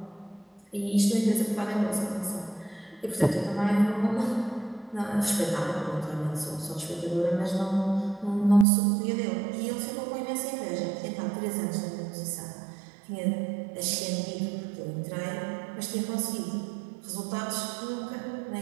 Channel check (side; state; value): left; drops out; at 8.7 s